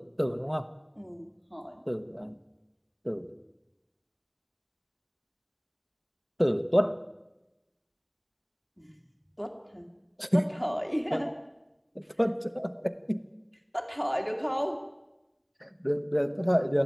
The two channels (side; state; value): both; identical; correlation 1.00